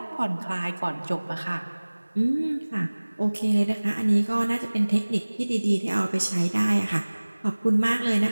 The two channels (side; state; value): both; inverted; correlation -1.00